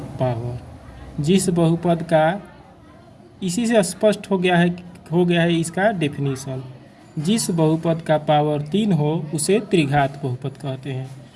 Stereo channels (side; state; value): both; identical; correlation 1.00